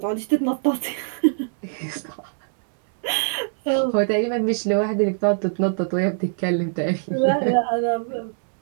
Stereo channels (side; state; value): left; silent; 64 dB below the other